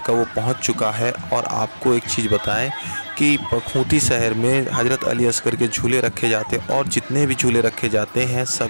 वो पहुंच चुका है। और आपको एक चीज़ बताएं कि खूंटी शहर में हज़रत अली असगर के झूले रखे जाते हैं, और जितने भी झूले रखे जाते हैं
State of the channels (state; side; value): inverted; both; correlation -1.00